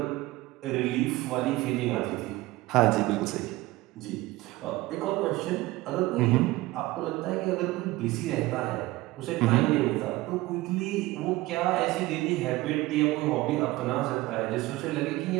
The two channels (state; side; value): quieter; left; 19.0 dB